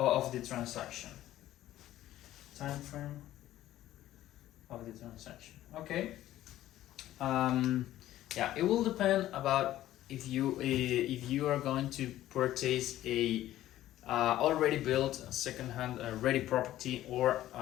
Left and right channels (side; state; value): right; quieter; 13.9 dB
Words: the transaction. Time frame of the transaction. Okay. Yeah, it will depend about if you are going to purchase a already built second-hand ready property, or